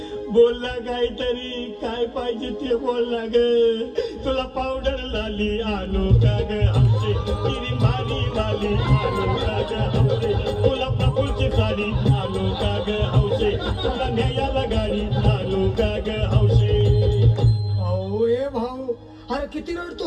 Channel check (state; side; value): identical; both; correlation 1.00